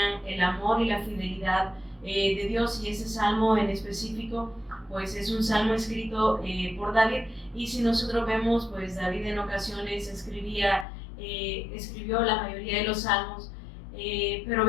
el amor y la fidelidad de Dios. Y ese salmo en específico pues es un salmo escrito por David, y si nosotros vemos, pues David en ocasiones escribió la mayoría de los salmos, pero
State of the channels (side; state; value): right; drops out; at 10.9 s